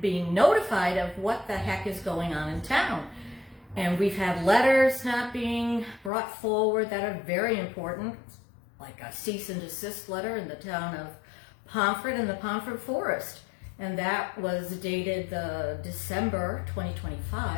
being notified of what the heck is going on in town. And we've had letters not being brought forward that are very important, like a cease and desist letter in the town of Pomfret and the Pomfret Forest. And that was dated December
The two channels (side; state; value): right; drops out; at 6.1 s